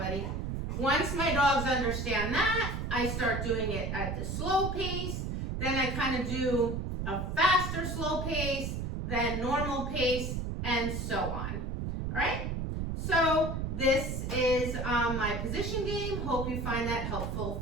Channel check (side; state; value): right; noise; rumble, 3 dB below the sound